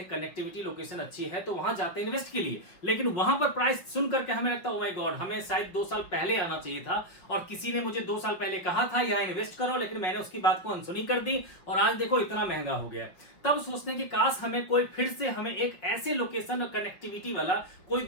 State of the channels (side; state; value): right; late; 5.4 ms